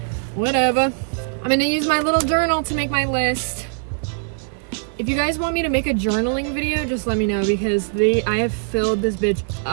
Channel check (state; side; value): silent; left; digital silence